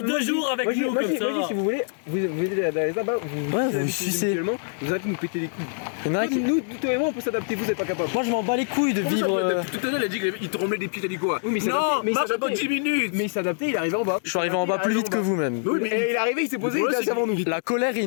2 jours avec nous comme ça. Moi, si vous voulez, vous venez d'aller là-bas, vous sucez. Vous allez nous péter les couilles. Il y en a qui- Nous, toi et moi, on peut s'adapter, vous êtes pas capable. Moi je m'en bats les couilles de vivre. Tout à l'heure, il a dit qu'il te remet des pieds, t'as dit quoi? Oui, mais il Non, s'adaptait, mais il marche s'adaptait. pas 10 minutes. Mais il s'est adapté, il est arrivé en bas. Je suis arrivé en bas plus vite que vous même. Oui, mais Et il est arrivé, il s'est posé, il Le était problème, assez avant nous. La colère et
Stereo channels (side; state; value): right; silent; digital silence